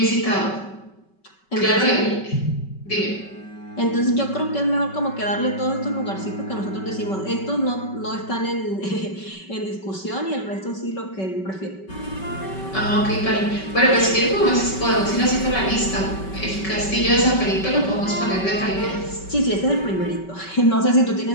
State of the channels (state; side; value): late; right; 5.3 ms